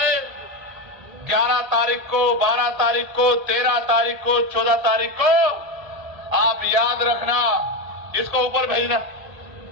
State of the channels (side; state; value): left; late; 1.8 ms